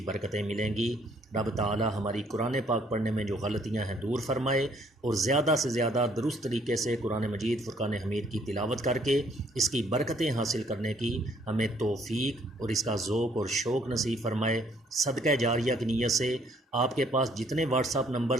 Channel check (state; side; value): normal; both; correlation 0.64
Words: برکتیں ملیں گی۔ رب تعالی ہماری قرآن پاک پڑھنے میں جو غلطیاں ہیں دور فرمائے، اور زیادہ سے زیادہ درست طریقے سے قرآن مجید فرقان حمید کی تلاوت کر کے اس کی برکتیں حاصل کرنے کی ہمیں توفیق اور اس کا ذوق اور شوق نصیب فرمائے۔ صدقہ جاریہ کی نیت سے آپ کے پاس جتنے واٹس ایپ